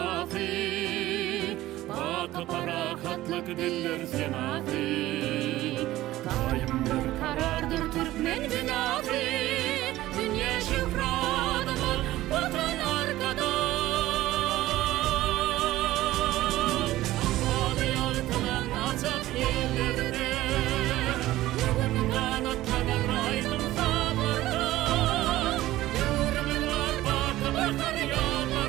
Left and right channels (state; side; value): quieter; left; 15.9 dB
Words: bakı parakatlık diller senafi. Daim bir karardır Türkmen binafi, dünya şifradımı vatan arkada. Bağlı yaltılan açık yerlerde, bugün kanatlanır aydın sabırda. Yürümün var bakı bakar